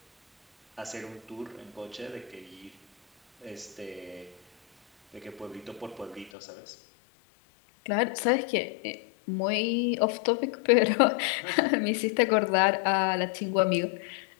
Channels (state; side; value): drops out; right; at 6.3 s